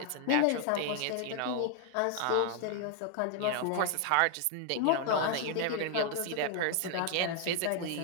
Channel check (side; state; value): both; different; correlation 0.00